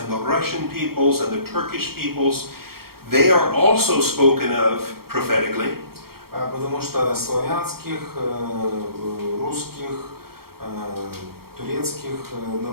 the Russian peoples and the Turkish peoples, they are also spoken of prophetically. Потому что славянских, русских, турецких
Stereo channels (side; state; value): left; late; 0.94 ms